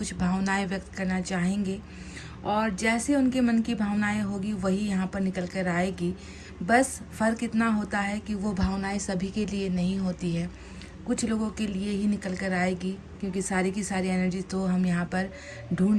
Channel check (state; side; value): identical; both; correlation 1.00